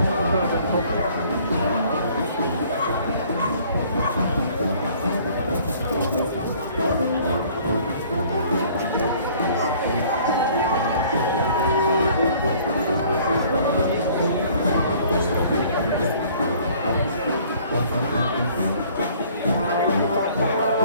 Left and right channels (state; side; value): inverted; both; correlation -0.55